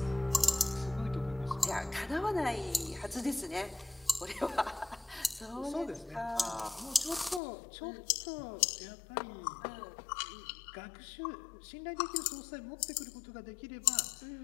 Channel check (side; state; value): right; drops out; at 7.4 s